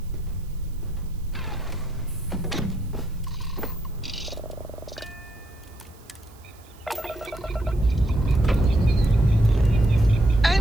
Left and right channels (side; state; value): right; noise; hiss, 27 dB below the sound